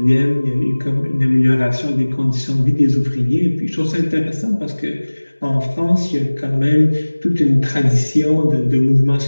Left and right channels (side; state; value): both; inverted; correlation -1.00